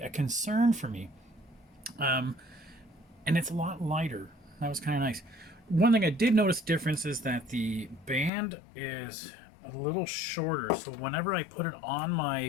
a concern for me. And it's a lot lighter. That was kind of nice. One thing I did notice difference is that the band is a little shorter. So whenever I put it on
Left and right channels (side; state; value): right; drops out; at 8.3 s